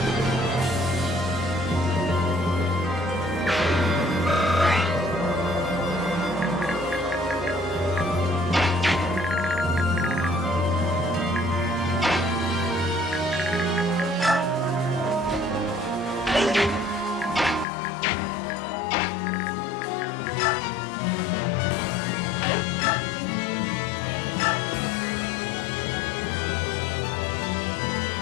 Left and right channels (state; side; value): drops out; right; at 17.7 s